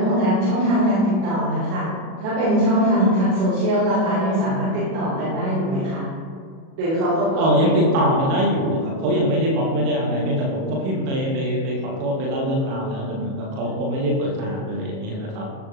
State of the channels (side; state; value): left; late; 37 ms